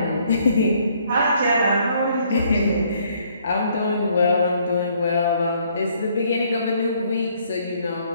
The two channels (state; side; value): inverted; both; correlation -0.65